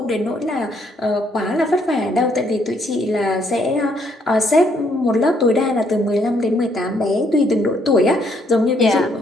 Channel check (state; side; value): normal; both; correlation 0.70